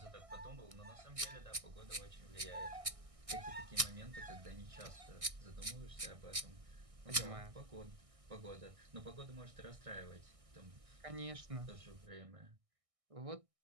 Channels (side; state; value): left; late; 1.6 ms